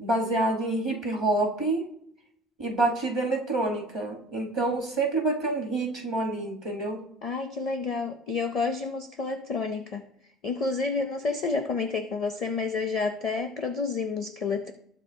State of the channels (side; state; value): both; normal; correlation 0.44